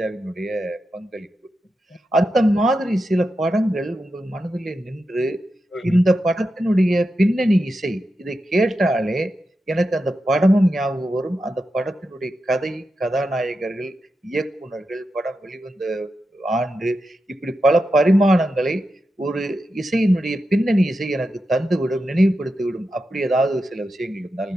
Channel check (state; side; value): normal; both; correlation 0.89